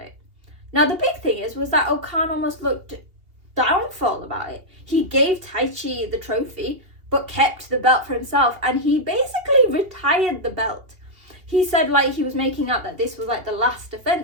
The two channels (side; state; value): left; late; 2.9 ms